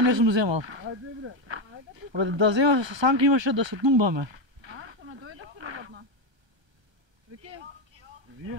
не сум земал. Да земав санка имаше да се тумбаме.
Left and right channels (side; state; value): left; late; 1.3 ms